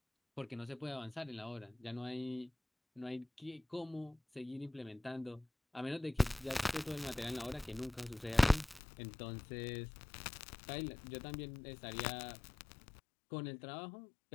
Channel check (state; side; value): drops out; right; at 8.8 s